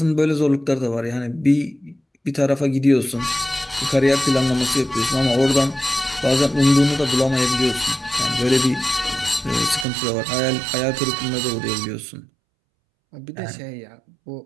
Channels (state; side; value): drops out; left; at 9.9 s